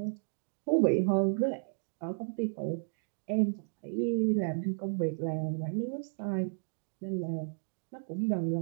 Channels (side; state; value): left; silent; digital silence